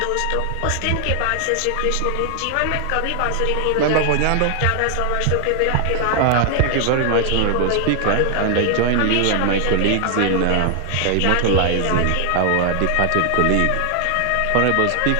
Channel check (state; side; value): different; both; correlation 0.00